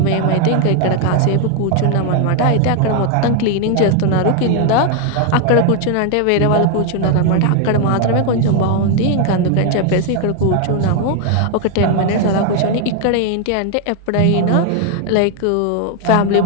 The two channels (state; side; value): different; both; correlation 0.01